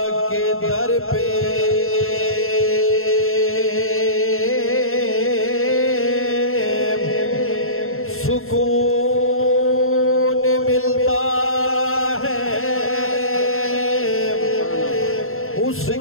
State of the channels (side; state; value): right; late; 0.61 ms